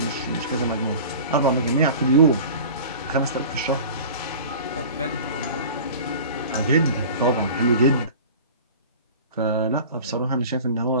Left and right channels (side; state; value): both; inverted; correlation -0.39